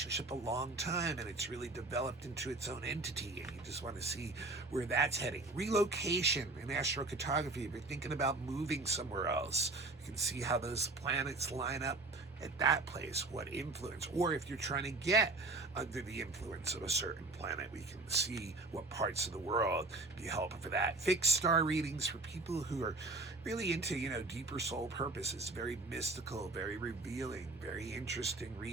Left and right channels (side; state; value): left; quieter; 3.3 dB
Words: a long time and it's really developed into its own entity and you just want to see where that's heading. Relocation in astrocartography, if you're thinking about moving somewhere else, you can see how those planets line up at that place, what influence, or if you're trying to get under the influence of a certain planet, we can see what parts of the world be helpful for that. Fixed star readings for people who are really into, deeper soul purposes, very mystical, very revealing, very interesting